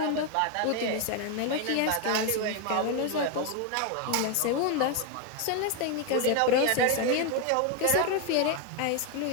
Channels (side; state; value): both; different; correlation 0.01